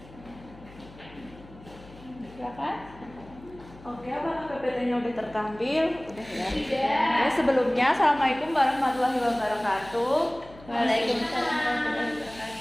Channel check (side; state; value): left; noise; hum, 20 dB below the sound